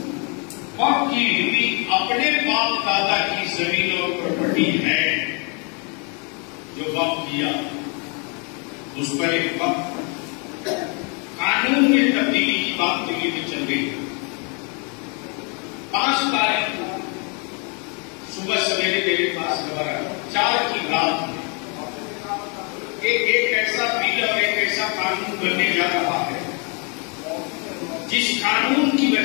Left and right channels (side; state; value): right; quieter; 35.3 dB